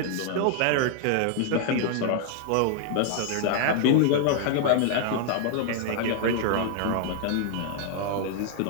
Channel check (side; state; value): both; different; correlation 0.00